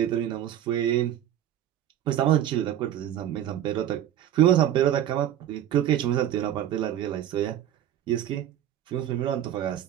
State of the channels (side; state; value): left; quieter; 11.3 dB